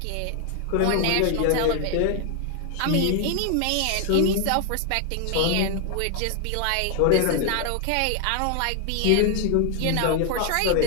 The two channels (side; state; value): both; different; correlation 0.00